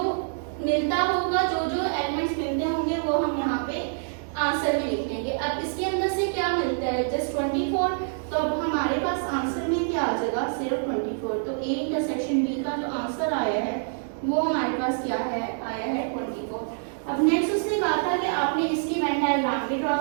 मिलता होगा, जो जो एलिमेंट्स मिलते होंगे वो हम यहाँ पे आंसर में लिख लेंगे। अब इसके अंदर से क्या मिलता है, जस्ट 24, तो अब हमारे पास आंसर में क्या आ जाएगा, सिर्फ 24। तो ए इंटरसेक्शन बी का जो आंसर आया है वो हमारे पास क्या है, आया है 24। अब नेक्स्ट उसने कहा था कि आपने इसकी वेन डायग्राम भी ड्रॉ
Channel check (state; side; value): silent; left; 61 dB below the other